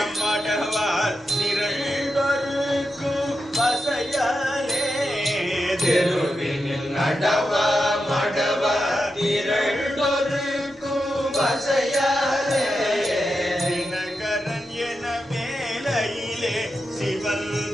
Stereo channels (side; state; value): both; normal; correlation 0.88